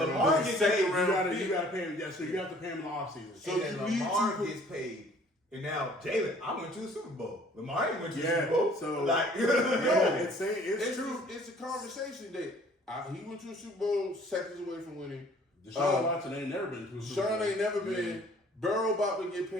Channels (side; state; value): both; normal; correlation 0.55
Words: it. gets Second paid, You round gotta pick. pay him. Yeah, so you have to pay him in the offseason. So and then you need Lamar to- gets paid. And now Jalen, I went to the Super Bowl. Lamar ain't went to the Yeah, Super Bowl. so- like, Yeah, it's true. It's a conversation that he went to a Super Bowl seconds away from winning. Deshaun Watson ain't never been to a Super Sean Bowl. ain't never been. Burrow about to get